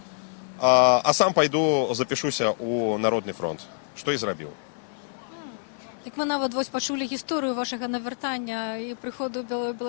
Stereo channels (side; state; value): right; silent; 56 dB below the other